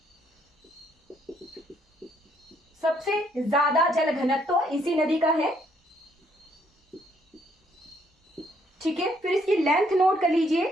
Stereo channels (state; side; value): normal; both; correlation 0.69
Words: सबसे ज्यादा जल घनत्व इसी नदी का है। ठीक है, फिर इसकी लेंथ नोट कर लीजिए